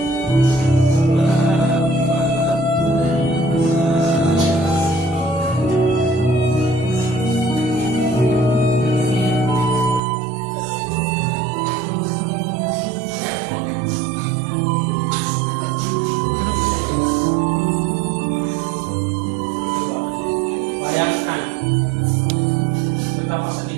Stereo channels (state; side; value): drops out; left; at 10.0 s